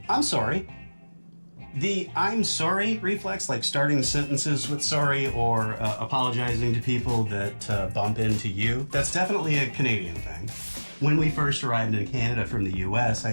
I'm sorry. The I'm sorry reflex, like starting sentences with sorry or apologizing to people that bump into you, that's definitely a Canadian thing. When we first arrived in Canada from the US,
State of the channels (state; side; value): inverted; both; correlation -1.00